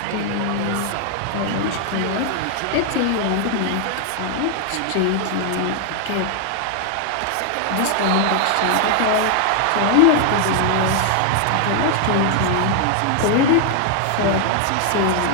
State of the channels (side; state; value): both; different; correlation 0.00